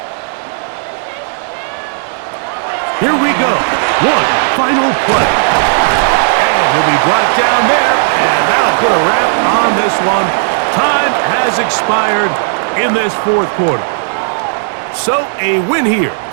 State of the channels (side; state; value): left; silent; digital silence